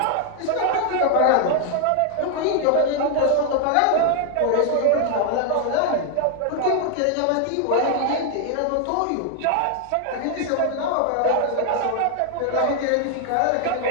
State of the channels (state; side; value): different; both; correlation 0.00